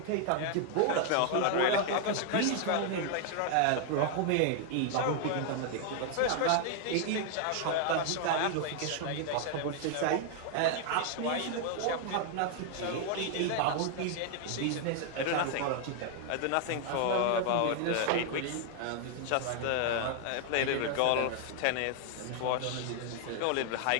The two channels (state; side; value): different; both; correlation 0.00